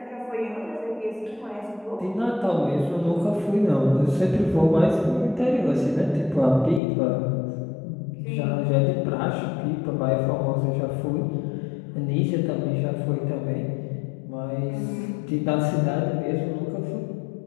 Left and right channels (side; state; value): right; drops out; at 6.8 s